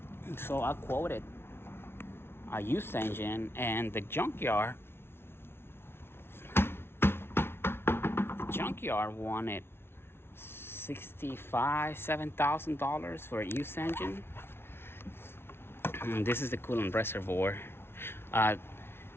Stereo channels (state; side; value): late; right; 0.12 ms